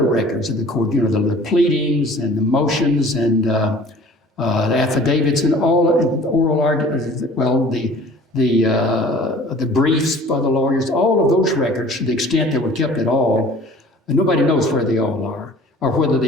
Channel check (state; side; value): normal; both; correlation 0.47